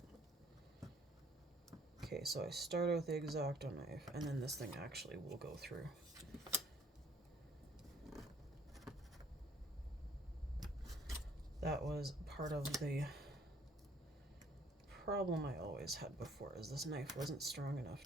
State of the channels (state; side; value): normal; both; correlation 0.59